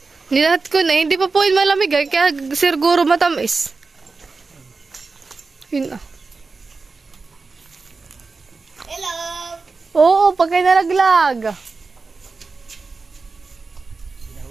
Nilahat ko na, hindi pa po yun malamig ay, kaya siguro matamis. Yun na. Hello! Oo, pagkay nalaglag.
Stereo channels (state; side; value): quieter; left; 4.2 dB